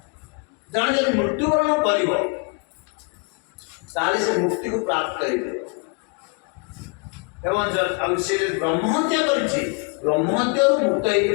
ଜଣେ ଯଦି ମୃତ୍ୟୁବରଣ କରିବ ତାହେଲେ ସେ ମୁକ୍ତିକୁ ପ୍ରାପ୍ତ ହେଇଯିବ। ଏବଂ ଆଉ ସେ ଯଦି ବ୍ରହ୍ମହତ୍ୟା କରିଛି ବ୍ରହ୍ମହତ୍ୟାରୁ ମୁକ୍ତ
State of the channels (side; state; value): right; quieter; 35.7 dB